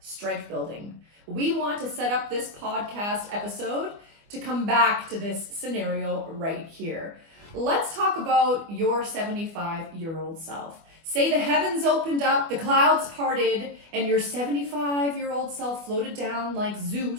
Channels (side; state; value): left; late; 24 ms